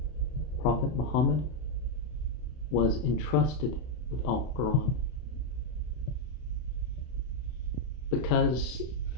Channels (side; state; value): right; late; 32 ms